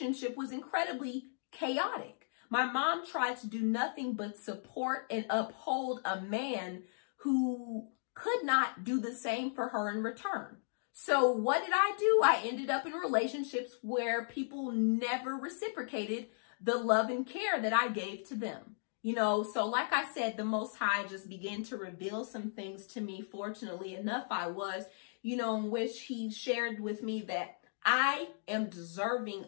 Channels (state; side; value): silent; right; digital silence